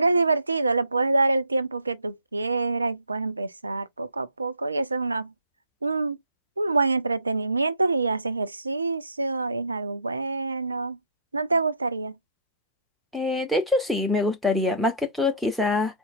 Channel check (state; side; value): inverted; both; correlation -0.51